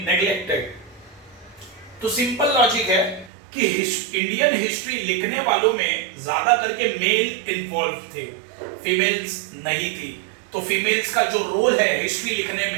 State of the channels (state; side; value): drops out; left; at 3.3 s